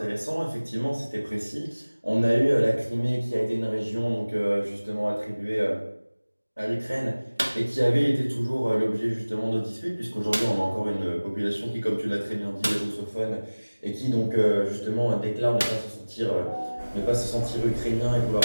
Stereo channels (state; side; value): inverted; both; correlation -1.00